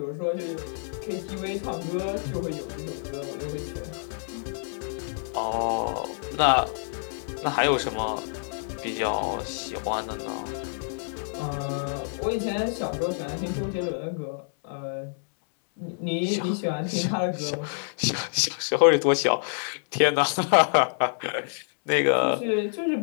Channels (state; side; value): silent; right; 60 dB below the other